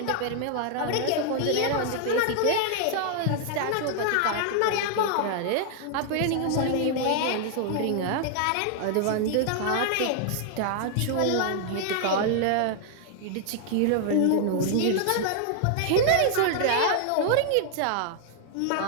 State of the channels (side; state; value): both; different; correlation 0.00